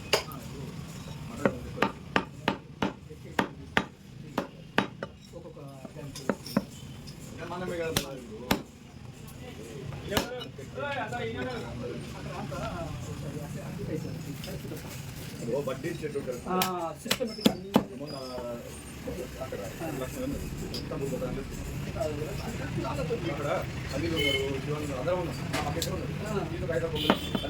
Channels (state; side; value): identical; both; correlation 1.00